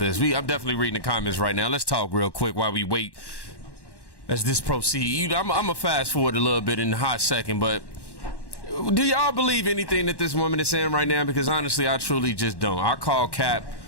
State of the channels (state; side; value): late; right; 1.1 ms